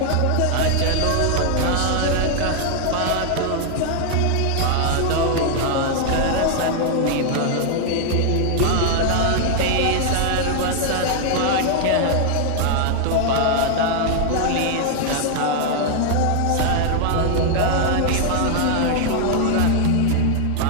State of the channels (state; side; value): different; both; correlation 0.00